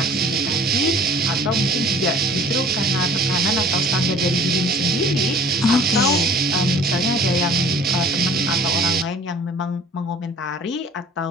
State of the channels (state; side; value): normal; both; correlation 0.49